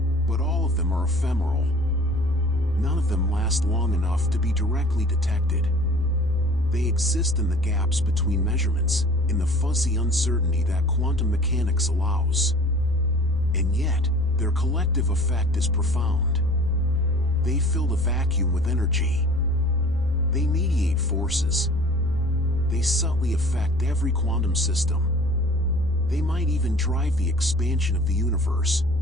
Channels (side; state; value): both; normal; correlation 0.46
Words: But all of them are ephemeral. None of them last long enough to be directly detected. They exist in the gaps between measurements, in the fuzzy uncertainty that quantum mechanics allows. And yet, their collective effect is profound. They fill the vacuum with energy. They mediate forces. They subtly affect every quantum system. They might even drive the expansion of the universe.